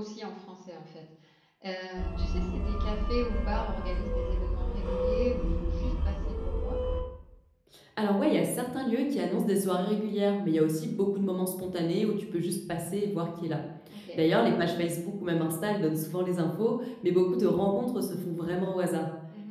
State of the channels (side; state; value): both; identical; correlation 1.00